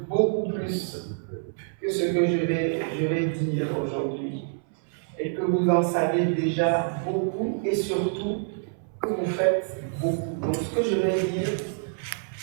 beaucoup plus que ce que je vais dire aujourd'hui. Et que vous en savez déjà beaucoup et surtout que vous faites beaucoup. Donc ce que je vais dire,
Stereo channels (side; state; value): left; silent; 60 dB below the other